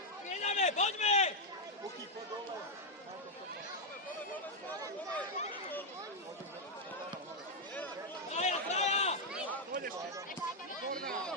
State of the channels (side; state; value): both; normal; correlation 0.00